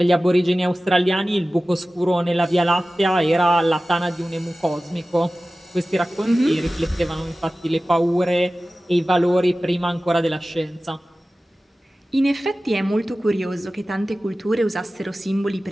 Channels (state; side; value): normal; both; correlation 0.96